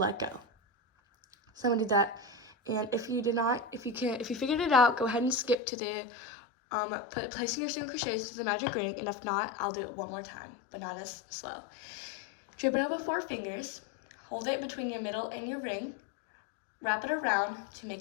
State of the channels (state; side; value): drops out; right; at 5.6 s